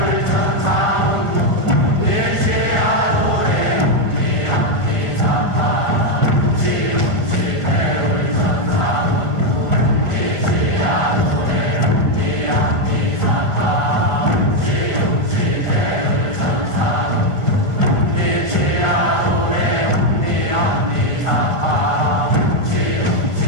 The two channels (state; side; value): late; right; 1.5 ms